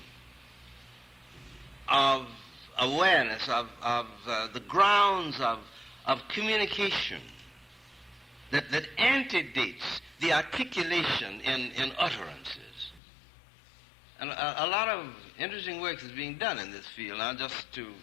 of awareness of the grounds of communication that antedates the articulation in utterances. And a lot of interesting work is being done in this field. Now, just to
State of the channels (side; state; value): right; drops out; at 13.0 s